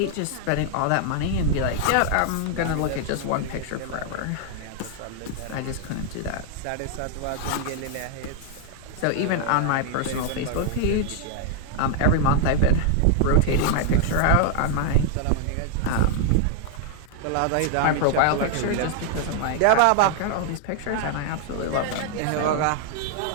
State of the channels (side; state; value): both; different; correlation 0.00